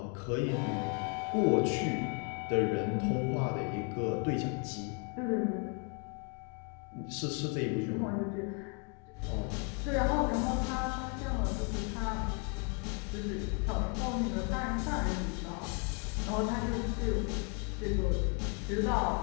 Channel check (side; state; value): right; quieter; 35.1 dB